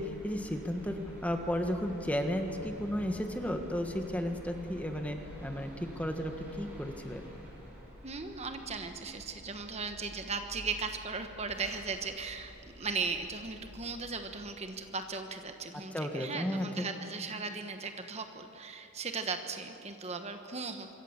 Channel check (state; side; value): normal; both; correlation 0.55